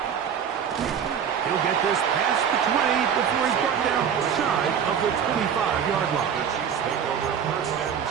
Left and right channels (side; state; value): left; quieter; 7.9 dB